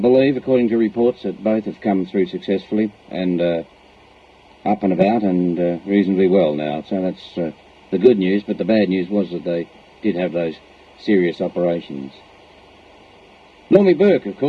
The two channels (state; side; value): identical; both; correlation 1.00